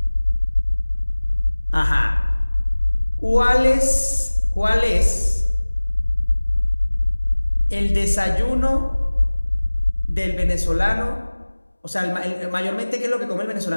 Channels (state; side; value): inverted; both; correlation -1.00